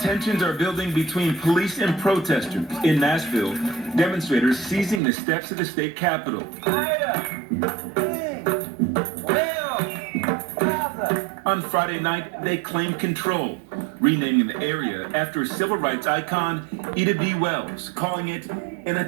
are building between police and protesters. In Nashville, demonstrators seizing the steps of the state capitol. On Friday night, they claimed control, renaming the area after civil rights icon Ida B. Wells, calling it an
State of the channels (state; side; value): drops out; left; at 5.0 s